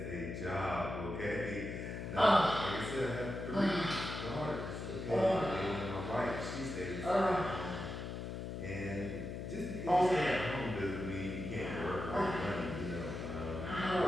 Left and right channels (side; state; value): left; noise; hum, 6 dB below the sound